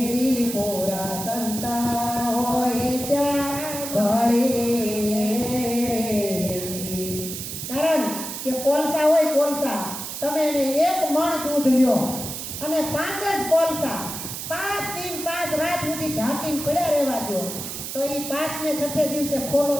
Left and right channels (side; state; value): right; noise; hiss, 7 dB below the sound